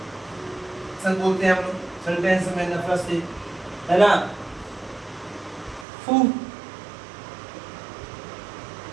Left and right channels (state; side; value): drops out; left; at 5.9 s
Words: सब बोलते हैं हम लोग सेंटेंस में नफरत से, है ना, फू,